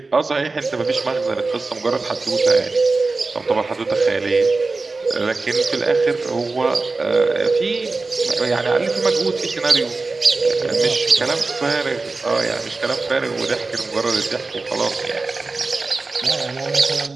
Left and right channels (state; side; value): quieter; left; 3.7 dB